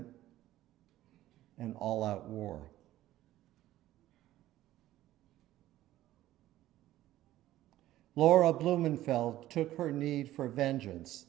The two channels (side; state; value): left; quieter; 14.6 dB